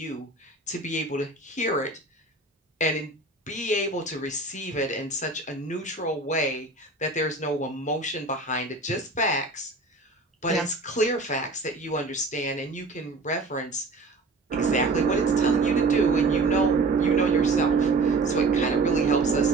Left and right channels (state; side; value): quieter; left; 3.3 dB